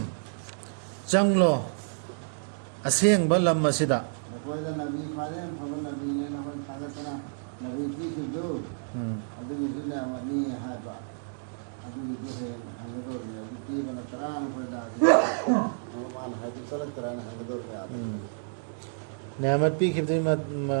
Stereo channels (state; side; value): silent; left; digital silence